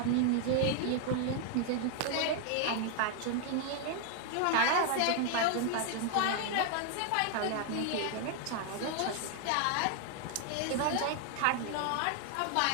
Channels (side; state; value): both; different; correlation 0.00